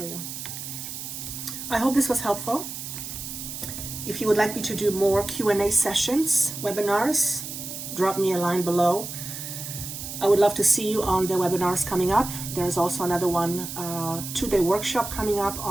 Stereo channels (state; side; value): noise; right; hiss, 8 dB below the sound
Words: you. I hope this was helpful. If you would like me to do more Q&A sessions, webinars, drop me a line below. I would love to see you on the webinars coming up. There's also another one, 2-day workshop coming up